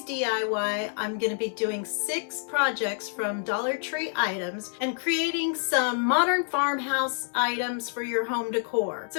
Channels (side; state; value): right; silent; 57 dB below the other